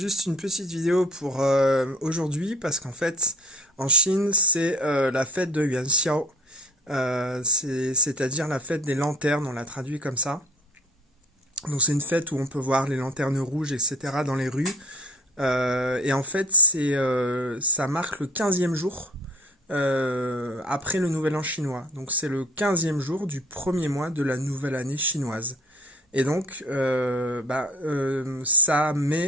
une petite vidéo pour aujourd'hui parce qu'en fait en Chine c'est la fête de Yuanxiao. C'est-à-dire la fête des lanternes, on l'a traduit comme ça. Donc c'est une fête où on peut voir les lanternes rouges, etc. dans les rues. Et en fait ça marque le 15e jour après le nouvel an chinois. Donc c'est le 15e jour du premier mois de la nouvelle année chinoise. Et donc, ça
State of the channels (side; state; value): both; normal; correlation 0.50